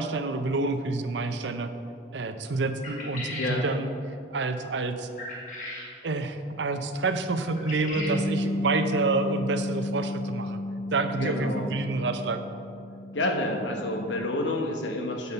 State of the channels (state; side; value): normal; both; correlation 0.31